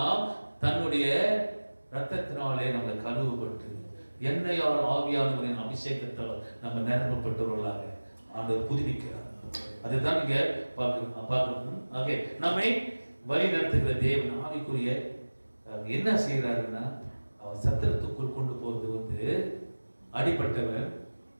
தன்னுடைய ரத்தத்தினாலே நம்மளை கழுவப்பட்டு எண்ணெயால் ஆவியானவரின் அபிஷேகத்தால் நம்ம நிரப்பப்பட்டவர்களாக ஆண்டவர் புதுப்பிக்கிறார். அதுதான் இங்க பார்க்கணும். ஆகவே நம்மை வழி நடத்துகிற தேவன் ஆவிக்குரிய என்ன செய்யறாருன்னா, அவர் சத்திரத்துக்குள் கொண்டு போறது வந்து அடிப்பட்டவன்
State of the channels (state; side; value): inverted; both; correlation -1.00